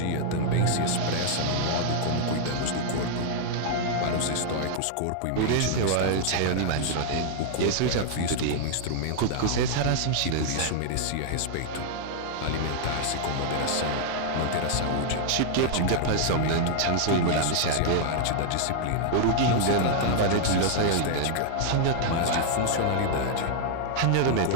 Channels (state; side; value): different; both; correlation -0.01